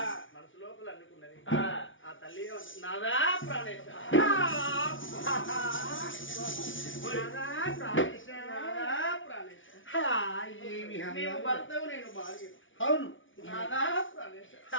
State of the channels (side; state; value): right; late; 0.56 ms